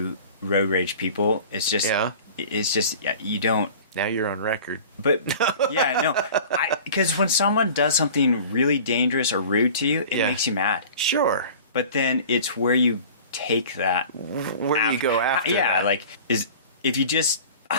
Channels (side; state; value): both; inverted; correlation -0.42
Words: road rage people. It's just you don't. Now you're on record. But because when someone does something really dangerous or rude to you, it makes you mad. Sure. But then it's where you take that. Where you go after that. Yeah, like, if you just